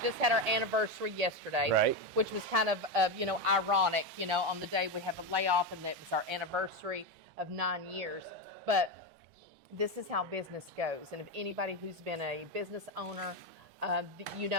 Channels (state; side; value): normal; both; correlation 0.12